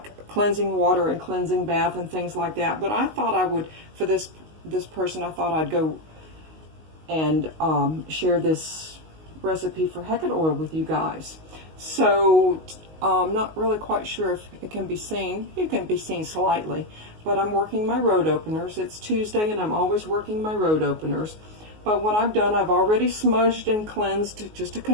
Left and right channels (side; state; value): left; late; 19 ms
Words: cleansing water and cleansing bath and things like that, but I thought I would, for this person, I thought I'd go and share this recipe for Hecate oil with you guys. So I'm not really quite sure if it can be seen. It can be seen slightly, but I'm working my road openers. It's Tuesday and I'm always working my road openers. But what I've done, I've already smudged and cleansed just a